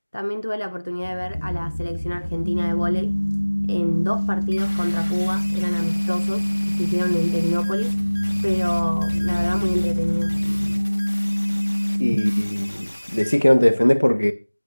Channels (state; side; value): inverted; both; correlation -1.00